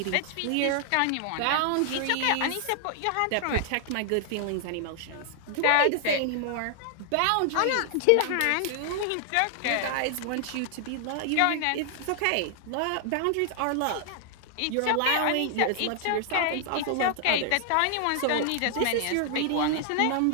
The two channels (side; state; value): both; different; correlation 0.00